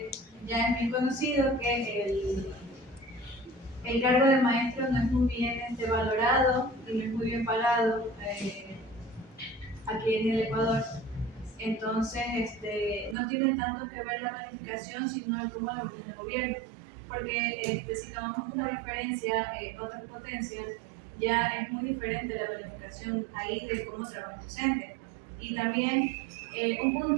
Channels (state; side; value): drops out; left; at 13.2 s